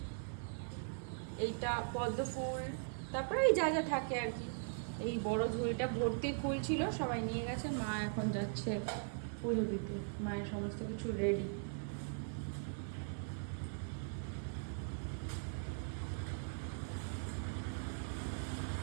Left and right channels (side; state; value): left; silent; 51 dB below the other